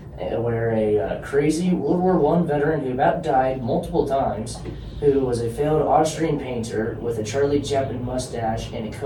where a crazy World War I veteran who about died multiple times, who was a failed Austrian painter with a Charlie Chaplin mustache and a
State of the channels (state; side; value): identical; both; correlation 1.00